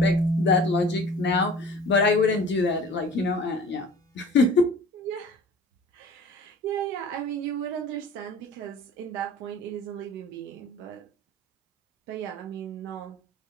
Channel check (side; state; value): both; normal; correlation 0.44